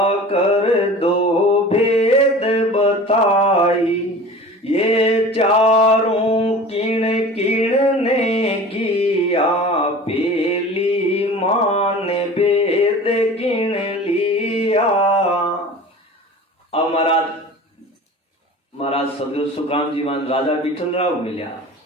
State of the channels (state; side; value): normal; both; correlation 0.39